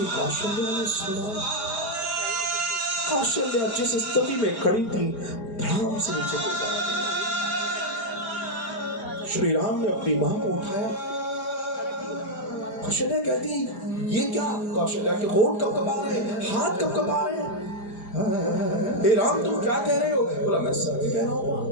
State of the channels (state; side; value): late; right; 4.9 ms